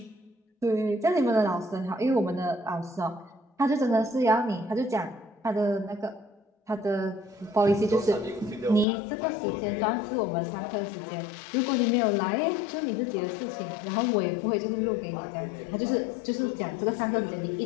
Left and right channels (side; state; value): right; drops out; at 8.8 s